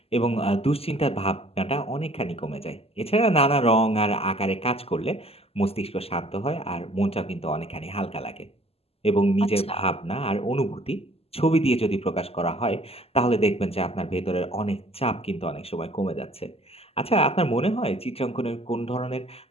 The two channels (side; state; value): right; late; 0.29 ms